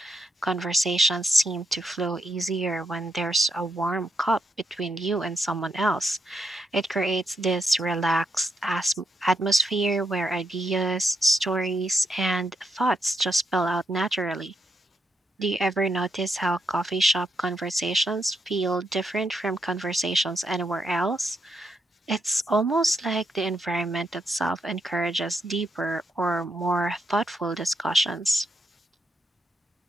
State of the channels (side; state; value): both; normal; correlation 0.81